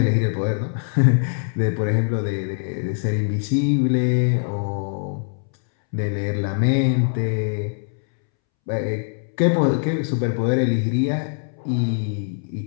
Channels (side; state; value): right; silent; 64 dB below the other